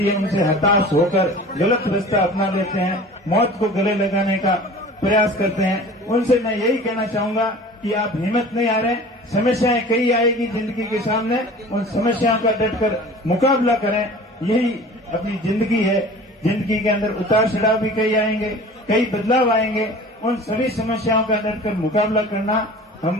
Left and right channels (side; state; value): both; normal; correlation 0.41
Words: है उनसे हताश होकर गलत रास्ता अपना लेते हैं, मौत को गले लगाने का प्रयास करते हैं। उनसे मैं यही कहना चाहूंगा कि आप हिम्मत नहीं हारें। समस्याएं कई आएगी जिंदगी के सामने, उन समस्याओं का डटकर मुकाबला करें। यही अपनी जिंदगी है। जिंदगी के अंदर उतार चढ़ाव भी कई आएंगे, कई बदलाव आएंगे। उन सभी समस्याओं का डटकर मुकाबला करना